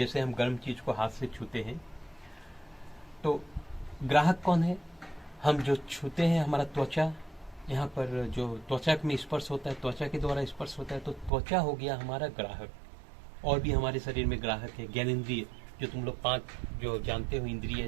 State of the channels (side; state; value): left; drops out; at 11.3 s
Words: हम गर्म चीज को हाथ से छूते हैं तो ग्राहक कौन है, हम जो छूते हैं हमारा त्वचा, यहाँ पर जो त्वचा में स्पर्श होता है, त्वचा के द्वारा स्पर्श होता है, तो त्वचा हो गया हमारा ग्राहक। और भी हमारे शरीर में ग्राहक है, ज्ञानेंद्रिय, जो तुम लोग 5 जो जानते हो इंद्रिय,